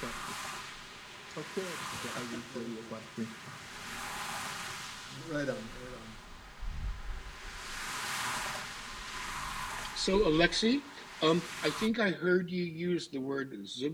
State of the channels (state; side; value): identical; both; correlation 1.00